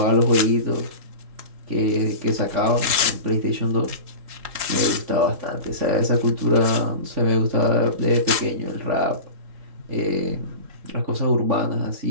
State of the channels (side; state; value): left; late; 3.7 ms